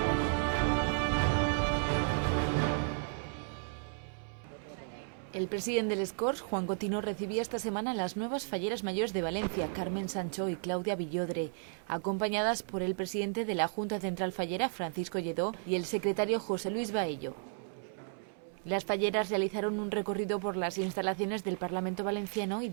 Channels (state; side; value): silent; left; 55 dB below the other